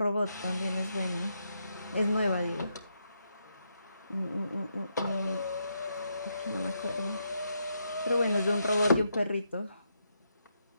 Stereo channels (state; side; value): inverted; both; correlation -0.80